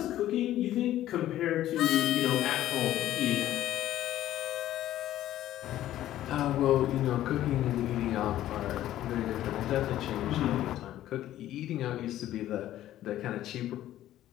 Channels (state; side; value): quieter; right; 13.2 dB